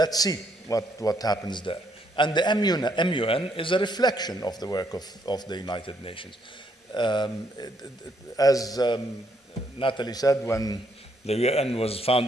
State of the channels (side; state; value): both; normal; correlation 0.72